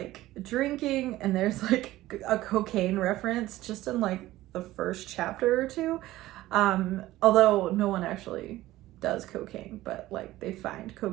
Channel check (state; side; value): quieter; left; 16.2 dB